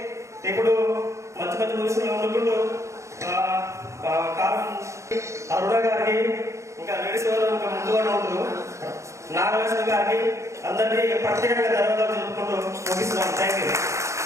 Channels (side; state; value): left; late; 0.14 ms